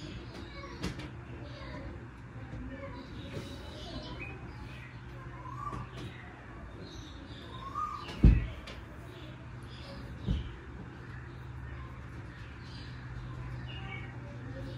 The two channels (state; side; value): identical; both; correlation 1.00